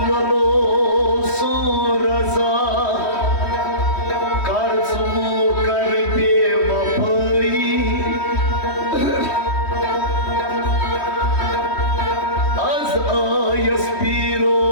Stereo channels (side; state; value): right; late; 3.1 ms